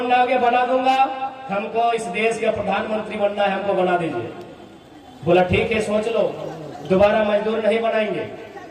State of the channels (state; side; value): identical; both; correlation 1.00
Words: होगा बना दूंगा, हमको इस देश का प्रधानमंत्री बनना है, हमको बना दीजिए। बोला ठीक है, सोच लो, दोबारा मजदूर नहीं बनाएंगे।